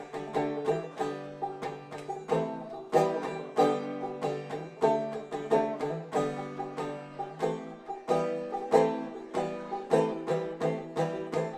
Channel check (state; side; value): identical; both; correlation 1.00